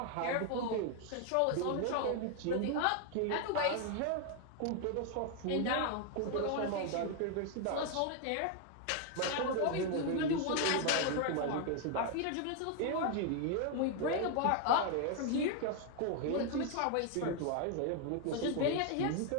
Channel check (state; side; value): different; both; correlation 0.00